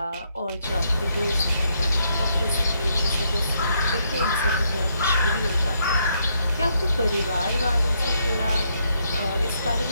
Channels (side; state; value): both; inverted; correlation -0.75